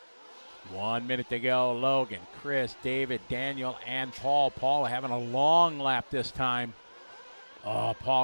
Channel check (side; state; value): both; inverted; correlation -1.00